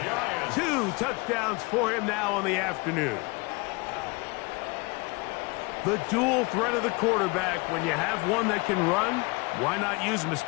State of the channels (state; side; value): quieter; right; 26.6 dB